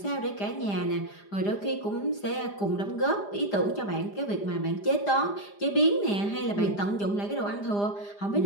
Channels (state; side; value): late; right; 4.9 ms